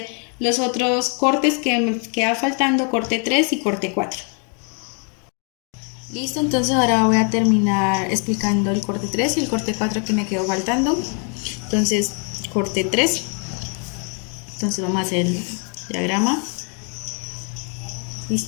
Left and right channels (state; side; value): quieter; right; 39.6 dB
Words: los otros cortes que me queda faltando, corte 3 y corte 4. Listo, entonces ahora voy a terminar explicando el corte 3 y el corte 4 que me quedó faltando. Entonces, corte 3. Entonces vamos a hacer el diagrama.